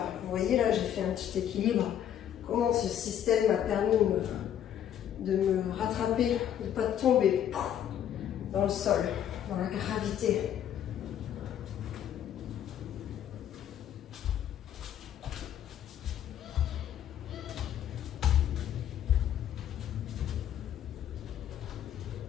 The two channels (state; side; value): quieter; right; 10.2 dB